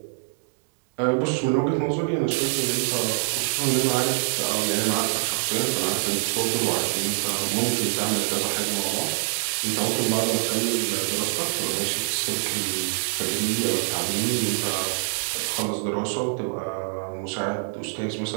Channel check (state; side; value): silent; left; digital silence